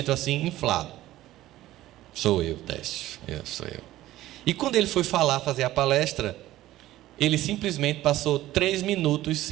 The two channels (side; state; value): left; quieter; 15.3 dB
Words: assim, inflado. Sou eu, Décio, sou eu. E quando ele foi fazer a palestra, ele simplesmente passou 3 minutos